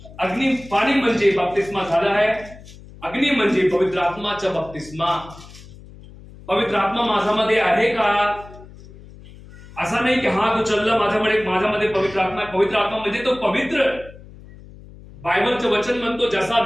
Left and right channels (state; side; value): noise; left; hum, 19 dB below the sound